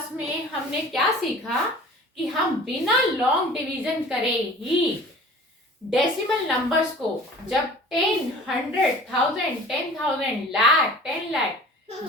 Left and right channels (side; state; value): both; normal; correlation 0.44